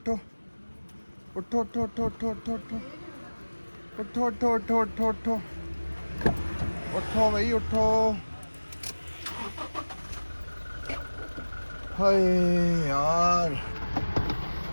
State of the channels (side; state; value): both; inverted; correlation -1.00